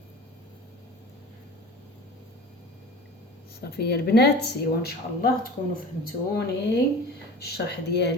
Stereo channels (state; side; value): normal; both; correlation 0.38